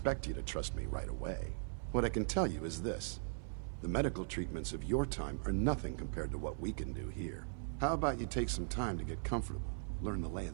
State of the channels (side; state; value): left; silent; 52 dB below the other